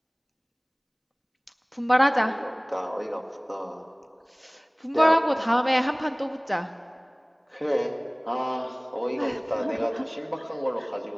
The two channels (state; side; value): identical; both; correlation 1.00